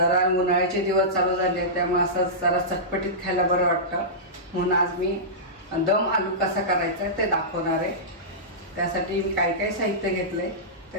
उन्हाळ्याचे दिवस चालू झाले त्यामुळे असं जरा चटपटीत खायला बरं वाटतं, म्हणून आज मी दम आलू कसा करायचा ते दाखवणार आहे। त्यासाठी मी काय काय साहित्य घेतले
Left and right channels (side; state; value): both; normal; correlation -0.16